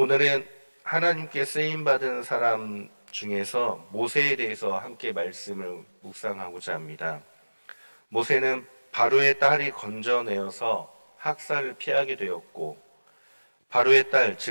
하나님께 쓰임받은 사람 중에서 모세에 대해서 함께 말씀을 묵상하고자 합니다. 모세는 바로의 딸이 건져내어서 학살을 피하게 되었고 바로의 딸,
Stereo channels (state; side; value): inverted; both; correlation -1.00